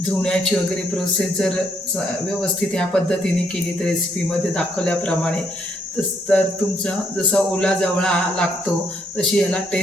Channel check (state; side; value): normal; both; correlation 0.72